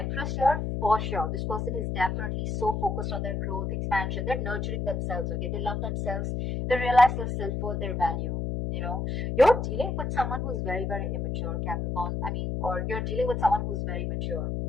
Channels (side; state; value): left; noise; hum, 2 dB below the sound